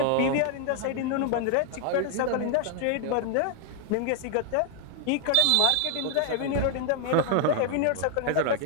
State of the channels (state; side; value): different; both; correlation 0.00